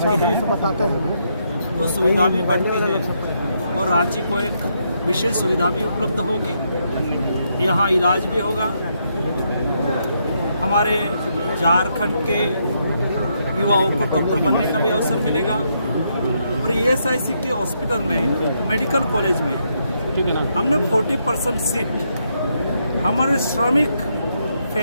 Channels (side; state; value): both; inverted; correlation -0.77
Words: है तो सुविधा भी बढ़ती है और रांची को एक विशेष सुविधा भी उपलब्ध होगी, यहाँ इलाज भी होगा। हमारे झारखंड के युवाओं को डॉक्टर बनने का भी अवसर मिलेगा और ईएसआईसी के हॉस्पिटल में, मेडिकल कॉलेज में हमने 40% सीट हमारे श्रमिक